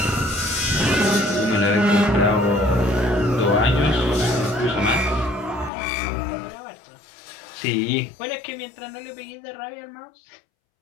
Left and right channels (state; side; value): drops out; right; at 5.7 s